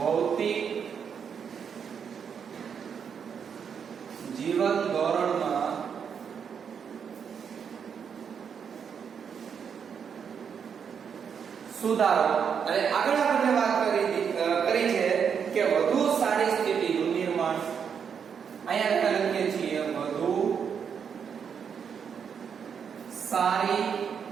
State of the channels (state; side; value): quieter; left; 7.1 dB